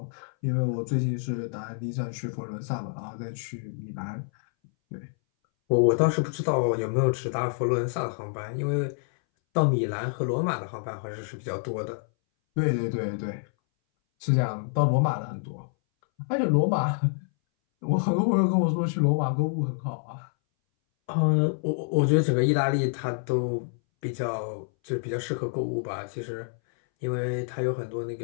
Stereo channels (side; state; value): right; silent; 60 dB below the other